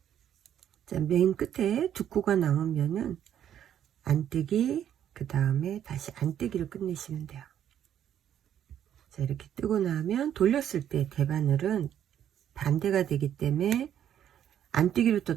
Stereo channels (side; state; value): left; quieter; 10.1 dB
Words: 자, 맨 끝에 2코가 남으면은 안뜨기, 그 다음에 다시 안뜨기를 끝내시면 돼요. 자, 이렇게 뜨고 나면 돌렸을 때 대바늘은 반대가 되기 때문에 안뜨기로